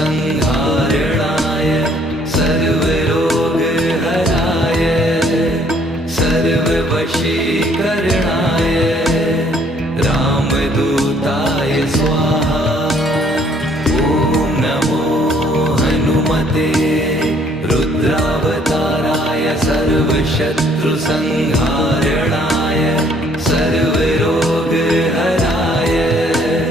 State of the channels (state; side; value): normal; both; correlation 0.63